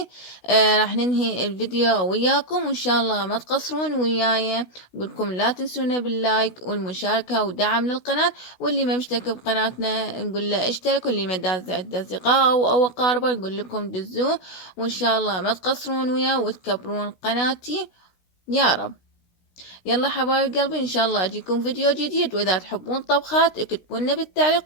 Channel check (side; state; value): right; late; 16 ms